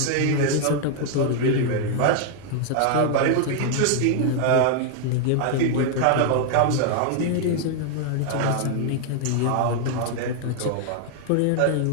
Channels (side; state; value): both; different; correlation 0.00